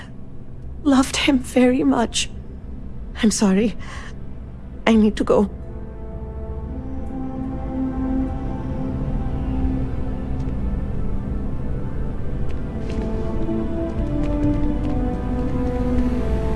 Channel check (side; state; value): both; identical; correlation 1.00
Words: loved him very much. I'm sorry. I need to go.